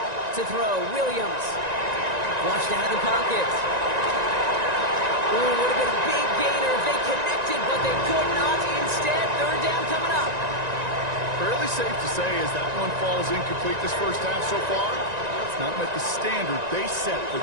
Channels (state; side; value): late; left; 1.9 ms